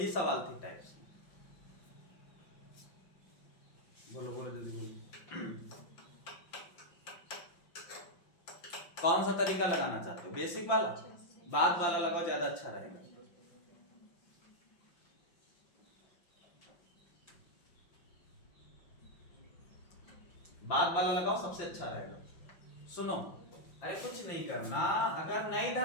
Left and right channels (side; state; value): right; late; 5.8 ms